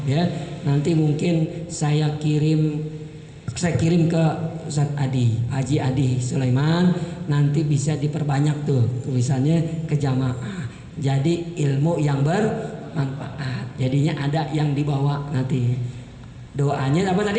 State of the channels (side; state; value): both; identical; correlation 1.00